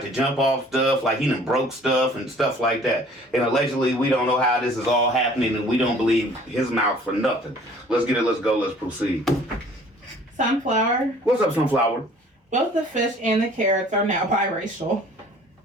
to jump off stuff, like he done broke stuff and stuff like that. And allegedly, we don't know how this is all happening, and we don't believe his mouth for nothing. Let's get it. Let's go. Let's proceed. Sunflower. What's up, Sunflower? Both the fish and the carrots are now biracial.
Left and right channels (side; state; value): both; normal; correlation 0.52